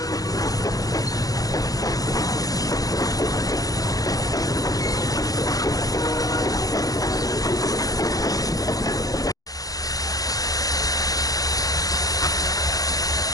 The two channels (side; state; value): right; late; 0.17 ms